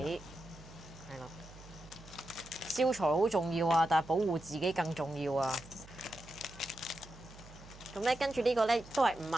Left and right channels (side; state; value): right; noise; hum, 19 dB below the sound